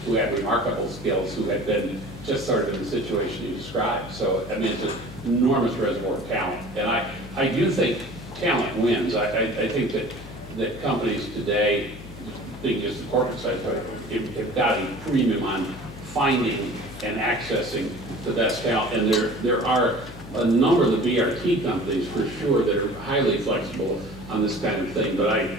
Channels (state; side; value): noise; left; hum, 15 dB below the sound